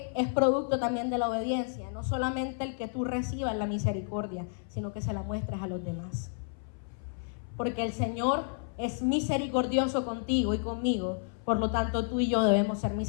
es producto también de la obediencia, no solamente el que tú recibas la misericordia, sino que se la muestres a los demás. Porque el Señor es misericordioso contigo y conmigo, por lo tanto tú y yo debemos ser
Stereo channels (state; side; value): silent; right; 57 dB below the other